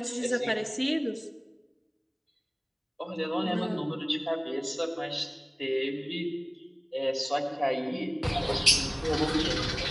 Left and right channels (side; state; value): both; identical; correlation 1.00